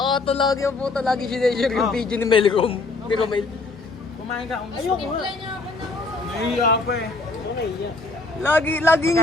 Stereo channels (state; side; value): quieter; right; 3.5 dB